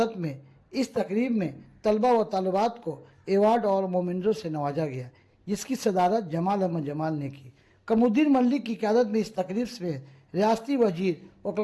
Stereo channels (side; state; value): both; identical; correlation 1.00